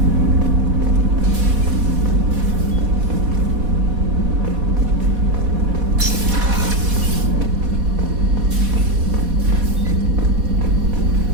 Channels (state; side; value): late; left; 4.1 ms